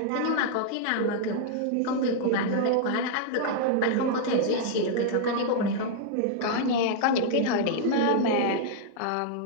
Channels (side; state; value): both; different; correlation -0.01